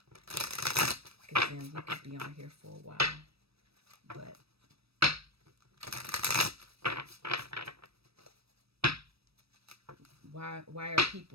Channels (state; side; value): late; left; 0.78 ms